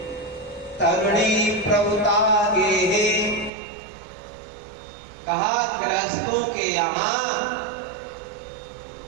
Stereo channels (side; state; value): left; drops out; at 3.5 s